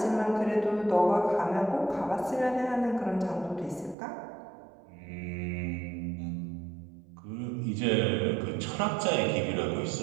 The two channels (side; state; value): left; drops out; at 4.0 s